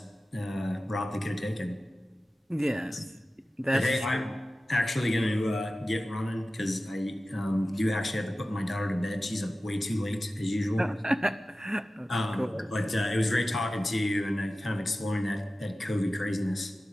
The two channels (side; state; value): both; normal; correlation 0.95